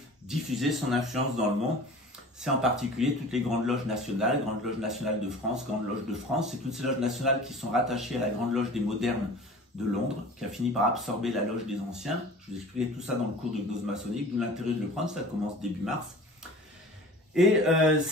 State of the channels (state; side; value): normal; both; correlation 0.41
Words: diffuser son influence dans le monde. C'est en particulier toutes les grandes loges nationales, Grande Loge nationale de France, Grande Loge de France, c'est toutes ces loges nationales qui sont rattachées à la Grande Loge des modernes de Londres, qui a fini par absorber la loge des anciens. Je vous expliquerai tout ça dans le cours de gnose maçonnique, d'où l'intérêt de le prendre, ça commence début mars. Et